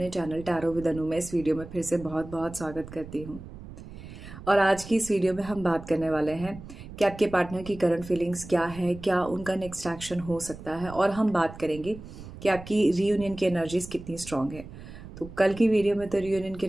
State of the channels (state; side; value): noise; right; rumble, 14 dB below the sound